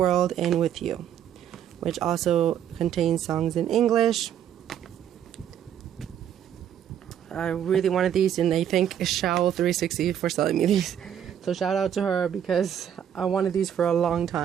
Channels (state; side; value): quieter; left; 9.6 dB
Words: and With You, which also contains songs in English. I really wanted these, and I thank Shao360 for selling me these. So shout out to her, because I wanted these for a long